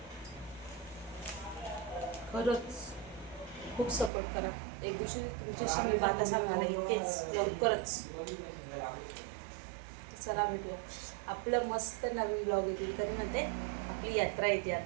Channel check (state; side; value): drops out; left; at 4.1 s